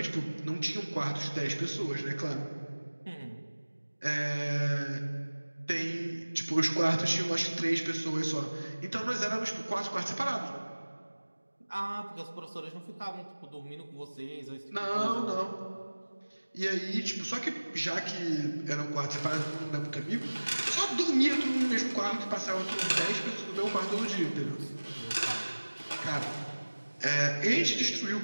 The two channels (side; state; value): both; inverted; correlation -1.00